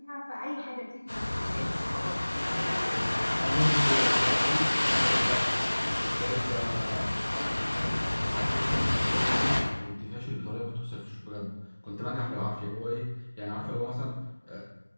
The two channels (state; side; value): inverted; both; correlation -1.00